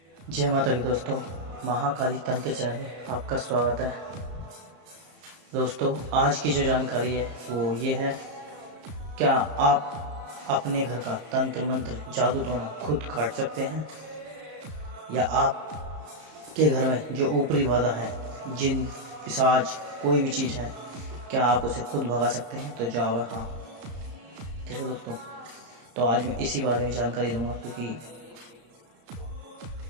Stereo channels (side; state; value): left; late; 34 ms